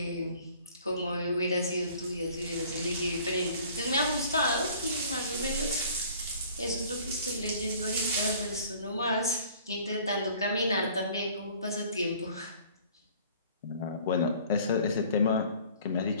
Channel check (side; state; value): both; inverted; correlation -0.52